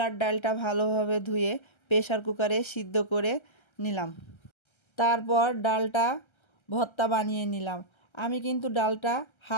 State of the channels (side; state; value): right; late; 1.3 ms